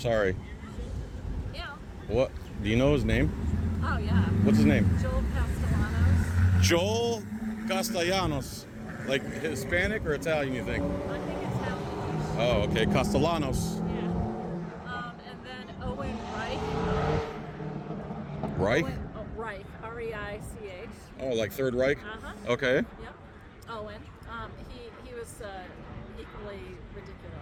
Yeah. What? Do you know his name? Oh, yeah. What's his name? Joel Castellanos. Joel Castellanos. Like Hispanic or Italian, you think? I think it's Italian. Oh, okay. Castellanos. Yeah. And then Owen Reich. Reich? Reich. R-E-I-C-H. Oh, like Third Reich? Uh-huh. Okay. Yep. Owen. He was equally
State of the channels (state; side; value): identical; both; correlation 1.00